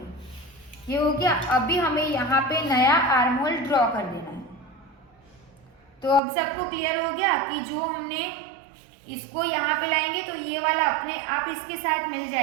ये हो गया। अभी हमें यहाँ पे नया आर्म होल ड्रॉ कर देना है। तो अब सबको क्लियर हो गया कि जो हमने इसको यहाँ पे लाएंगे तो ये वाला अपने आप इसके साथ मिल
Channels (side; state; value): left; drops out; at 6.2 s